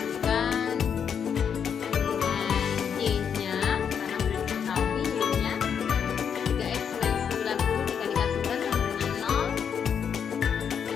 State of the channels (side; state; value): right; quieter; 7.5 dB